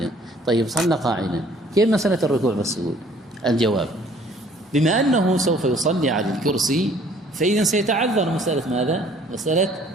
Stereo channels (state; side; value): normal; both; correlation 0.57